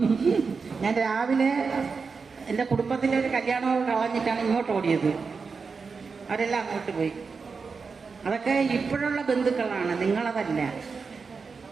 ഞാൻ രാവിലെ എൻ്റെ കുടുംബത്തിലെ ഒരു കല്യാണം കളഞ്ഞിട്ടാണ് ഇങ്ങോട്ട് ഓടിയത്. അവരെല്ലാം അങ്ങോട്ട് പോയി. അതൊക്കെ ഇപ്പോഴുള്ള ബന്ധുക്കളാണ്, നിങ്ങളതല്ല.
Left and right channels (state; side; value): quieter; left; 5.0 dB